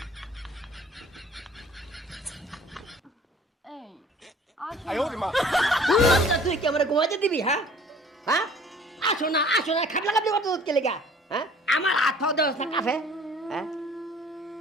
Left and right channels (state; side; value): normal; both; correlation 0.51